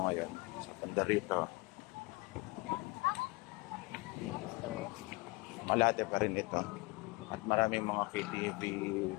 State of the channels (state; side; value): quieter; right; 24.4 dB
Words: ngayon sa Pandarito. Malate pa rin ito. At maraming mga KTV